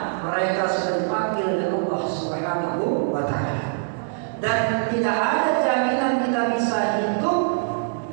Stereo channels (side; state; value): left; silent; digital silence